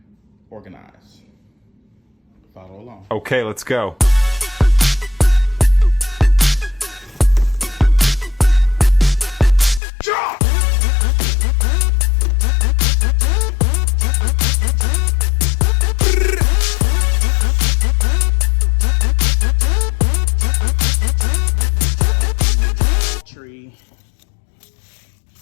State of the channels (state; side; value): drops out; right; at 9.8 s